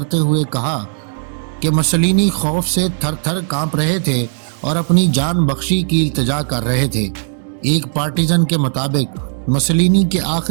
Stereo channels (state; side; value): silent; left; 68 dB below the other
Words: हुए कहा कि मुसोलिनी खौफ से थर थर कांप रहे थे और अपनी जान बख्शी की इल्तिजा कर रहे थे। एक पार्टिजन के मुताबिक मुसोलिनी के